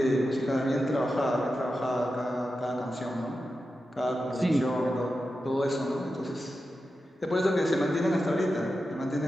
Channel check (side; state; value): both; normal; correlation 0.91